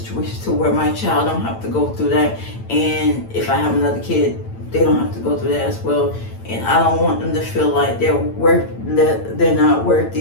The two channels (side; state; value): right; late; 8.9 ms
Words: to where my child don't have to go through that. And if I have another kid, they don't have to go through that as well. And I don't want them to feel like they're not